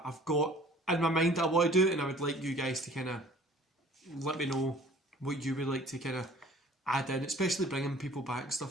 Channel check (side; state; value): both; normal; correlation 0.51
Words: I've got in my mind that I want to do. And I would like you guys to kind of let me know what you would like to kind of add in. Especially bringing people back and